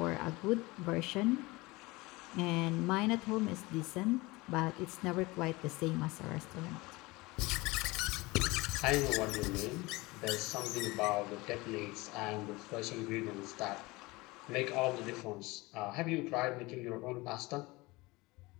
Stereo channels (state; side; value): quieter; right; 22.5 dB